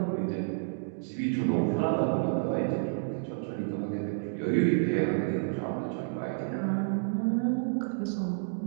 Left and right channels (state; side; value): silent; left; digital silence